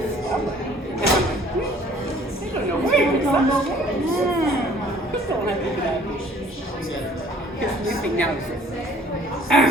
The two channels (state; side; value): normal; both; correlation 0.55